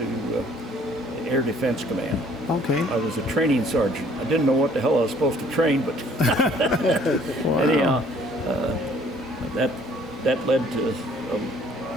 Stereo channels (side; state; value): both; normal; correlation 0.58